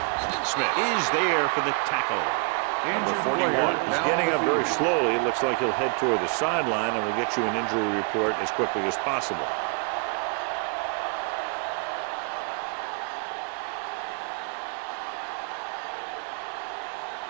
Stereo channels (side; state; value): left; quieter; 37.1 dB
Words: Smith is there for the tackle. Number 41 is getting up very slowly. It looks like he'll head toward the sideline, and we'll get you an injury report as quickly as possible.